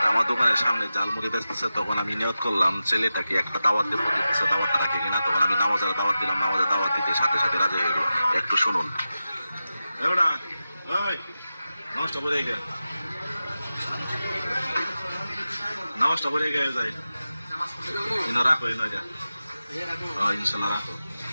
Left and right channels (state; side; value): inverted; both; correlation -0.93